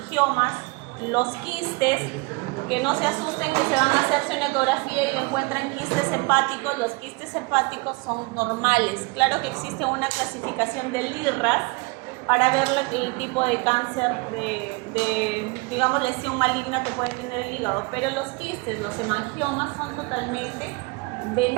los quistes, que no se asusten que se van a hacerse una ecografía y le encuentran quistes hepáticos. Los quistes hepáticos son normales. Claro que existe una clasificación del IRRAS para ver el tipo de cáncer, digamos, lesión maligna que puede tener el hígado. Pero los quistes, los hemangiomas son totalmente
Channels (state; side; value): quieter; left; 27.7 dB